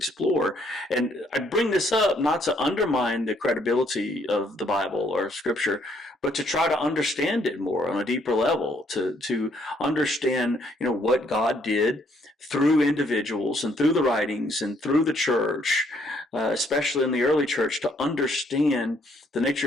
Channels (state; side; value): normal; both; correlation 0.68